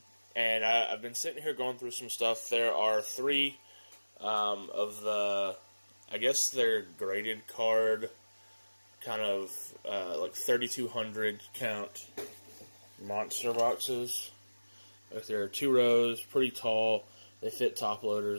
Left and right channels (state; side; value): inverted; both; correlation -1.00